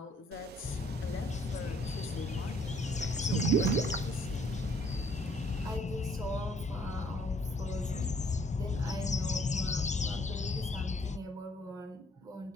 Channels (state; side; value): normal; both; correlation 0.63